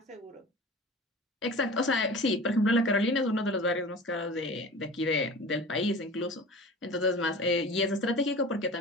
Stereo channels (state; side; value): normal; both; correlation 0.37